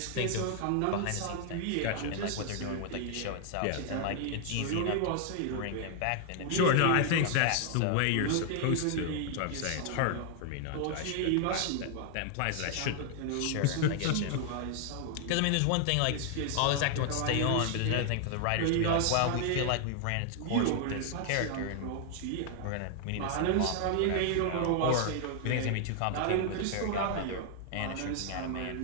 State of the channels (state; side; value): different; both; correlation 0.00